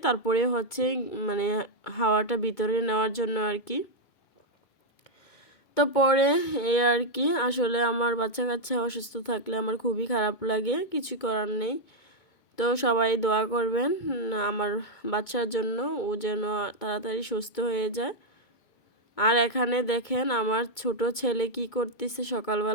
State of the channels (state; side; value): late; right; 2.2 ms